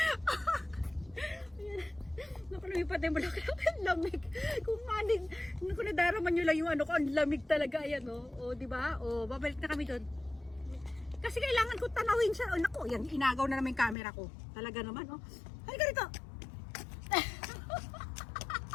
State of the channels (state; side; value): drops out; right; at 14.0 s